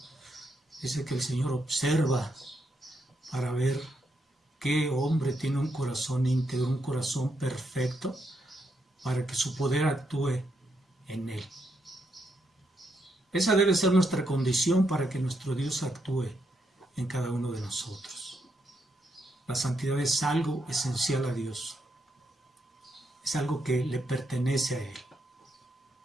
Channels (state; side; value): normal; both; correlation 0.80